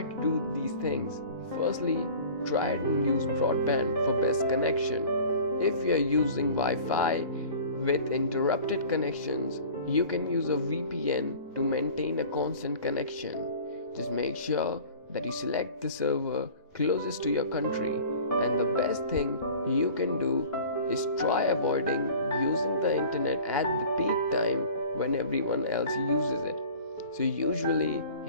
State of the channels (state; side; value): inverted; both; correlation -0.43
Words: to do these things. Firstly, try and use broadband for best connection. If you are using Wi-Fi with interrupted connections, you can use a VPN to maintain a constant connection. Just make sure that you select the server closest to your country, and the best thing you can do is try avoiding using the internet at the peak time when everyone else uses it. So usually